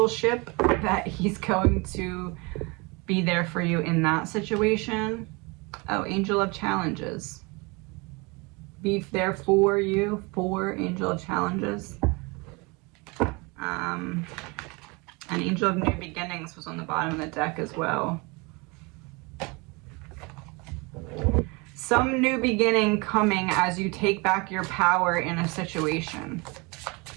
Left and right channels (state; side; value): quieter; left; 27.8 dB